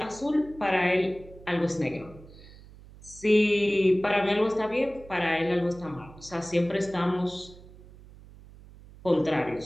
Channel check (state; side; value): noise; right; hum, 20 dB below the sound